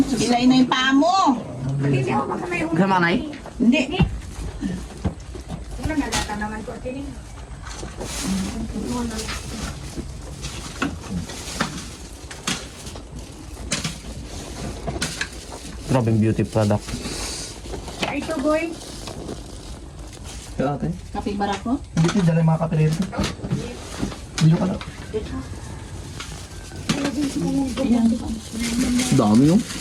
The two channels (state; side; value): identical; both; correlation 1.00